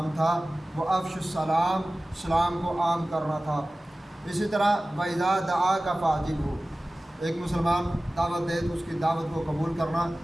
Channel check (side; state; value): both; normal; correlation 0.97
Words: تھا وہ افش السلام، سلام کو عام کرنا تھا۔ اسی طرح وَإِذَا دَعَاكَ فَأَجِبْهُ، ایک مسلمان دعوت دے تو اس کی دعوت کو قبول کرنا،